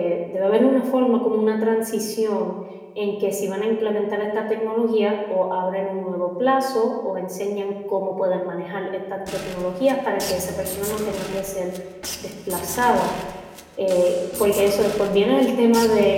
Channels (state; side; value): identical; both; correlation 1.00